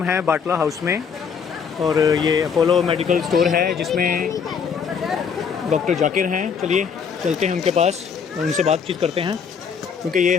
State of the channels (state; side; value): quieter; right; 6.5 dB